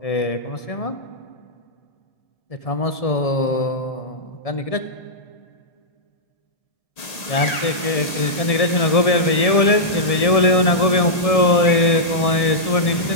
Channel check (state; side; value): late; right; 1.8 ms